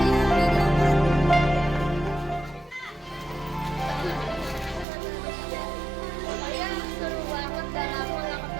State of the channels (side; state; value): left; drops out; at 4.9 s